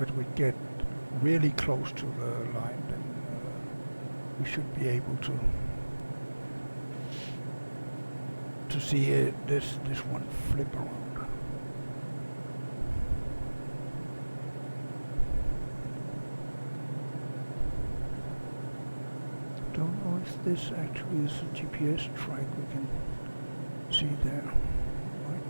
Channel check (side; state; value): both; inverted; correlation -1.00